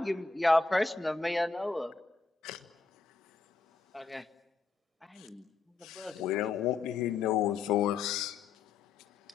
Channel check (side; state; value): right; quieter; 4.4 dB